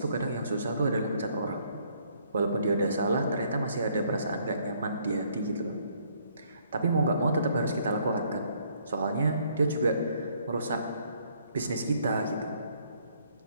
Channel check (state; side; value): inverted; both; correlation -0.66